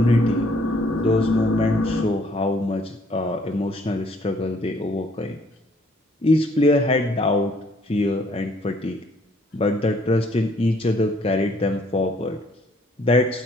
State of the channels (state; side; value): normal; both; correlation 0.63